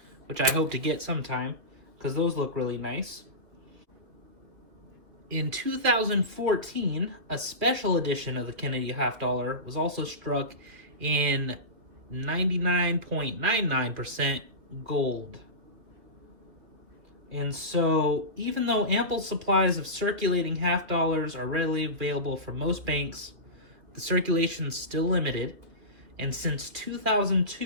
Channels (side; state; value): left; late; 2.7 ms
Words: which I hope to get sometime because those look really nice. In 2014, a special edition of the Kennedy half dollar was also struck in 99.99% gold. And so, even though ample supplies of circulating half dollars are readily available from most banks, the circulation is still limited. And since